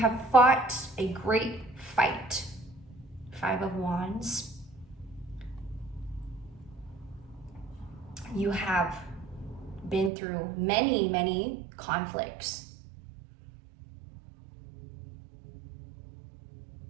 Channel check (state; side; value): drops out; left; at 10.1 s